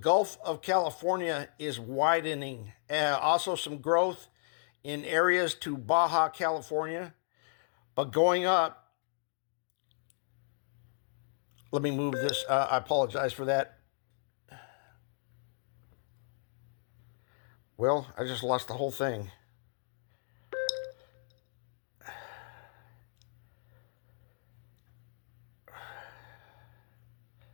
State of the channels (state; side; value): silent; right; digital silence